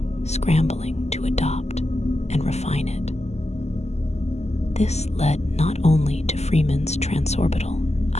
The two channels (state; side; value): late; right; 0.32 ms